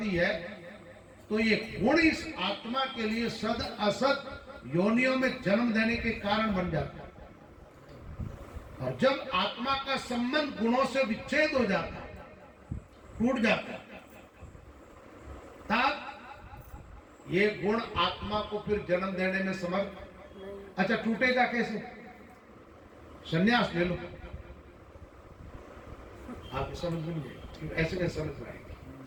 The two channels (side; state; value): both; identical; correlation 1.00